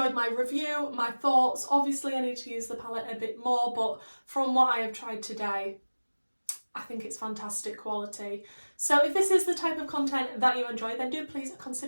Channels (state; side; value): inverted; both; correlation -1.00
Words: my review, my thoughts. Obviously I need to use the palette a bit more, but from what I have tried today, I think it's fantastic quality. So if this is the type of content that you enjoy, then do please